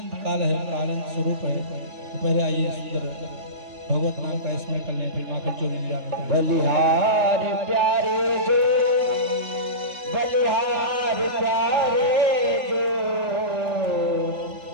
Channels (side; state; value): left; late; 3.3 ms